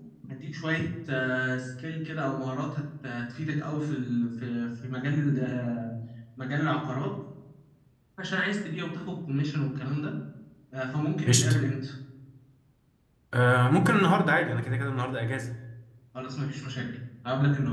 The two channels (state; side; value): identical; both; correlation 1.00